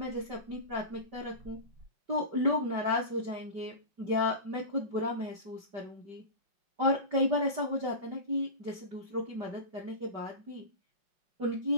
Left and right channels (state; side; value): late; left; 5.1 ms